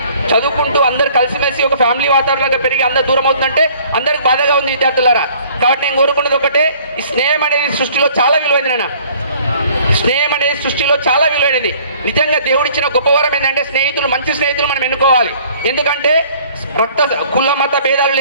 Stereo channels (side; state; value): both; inverted; correlation -0.55